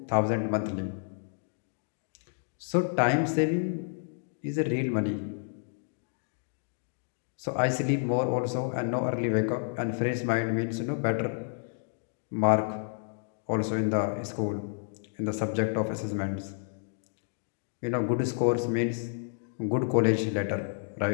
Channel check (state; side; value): silent; right; digital silence